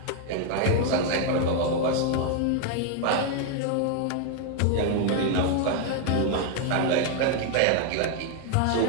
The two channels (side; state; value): both; different; correlation 0.00